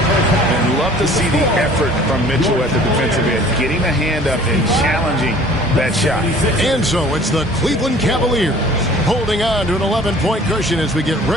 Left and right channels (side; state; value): both; normal; correlation 0.50